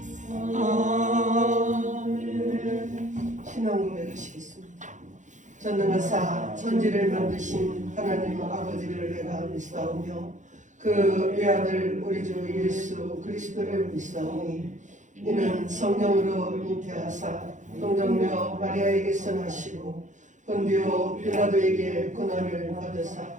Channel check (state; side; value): late; left; 0.36 ms